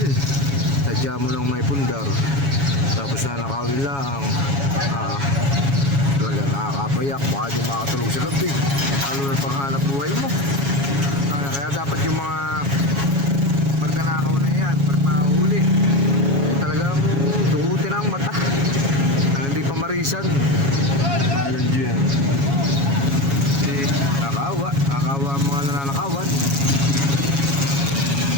Sadya mo lang may pundar. Tapos nanakawin lang. Talaga nakakapayak. Baka di makatulog sa gabi. Lalo na panghanap buhay mo. Kaya dapat yung mga pagkanakaw na yan, pag mahuli, ay talagang dukutin ang mata. Hindi pa marisan. Alam nyo yan. Nakakawa ang mga nananakawan.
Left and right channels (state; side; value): late; left; 7.2 ms